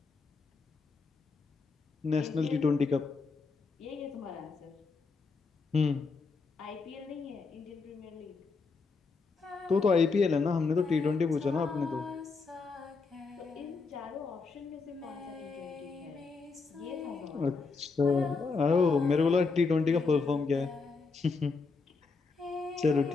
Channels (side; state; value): right; quieter; 4.4 dB